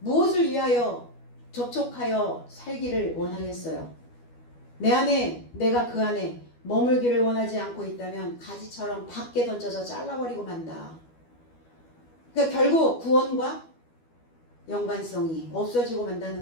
위하여 접촉하여 살기를 원하겠어요? 내 안에 내가 그 안에 머물기를 원하지 않고 있다면 가지처럼 밖에 던져서 잘라버리고 만다. 그러니까 결국 구원과 연관성이 없어지고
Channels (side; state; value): right; late; 12 ms